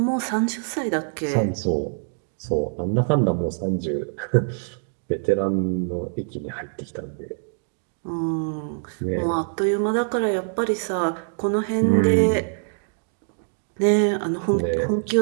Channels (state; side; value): silent; left; digital silence